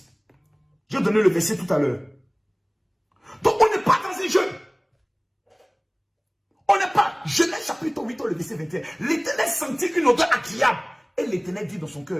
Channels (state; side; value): identical; both; correlation 1.00